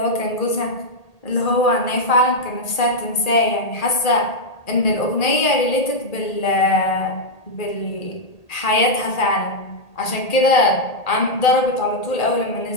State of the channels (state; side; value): late; right; 1.8 ms